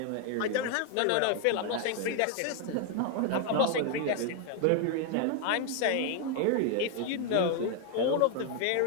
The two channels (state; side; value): different; both; correlation 0.00